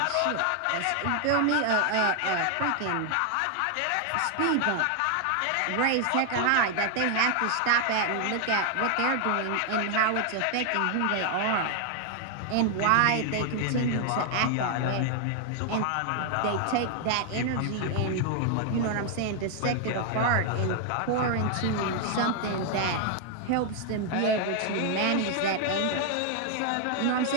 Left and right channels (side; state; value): both; different; correlation 0.00